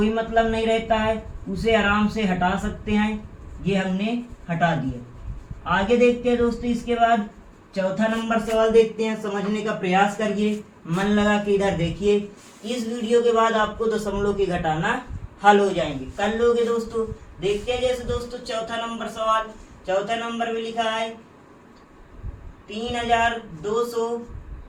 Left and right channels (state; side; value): identical; both; correlation 1.00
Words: मतलब नहीं रहता है, उसे आराम से हटा सकते हैं। ये हमने हटा दिया। आगे देखते हैं दोस्तों, इसके बाद चौथा नंबर सवाल देखते हैं। समझने का प्रयास करिए, मन लगा के इधर देखिए। इस वीडियो के बाद आपको दशमलव के घटाना हल हो जाएंगे, कर लोगे दोस्तों। देखते हैं जैसे दोस्तों चौथा नंबर सवाल, चौथा नंबर में लिखा है